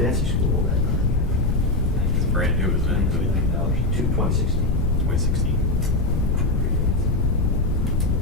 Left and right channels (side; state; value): left; noise; rumble, 2 dB below the sound